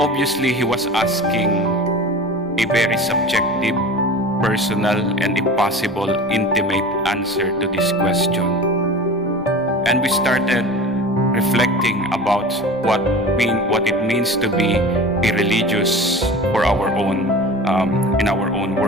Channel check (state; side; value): normal; both; correlation 0.35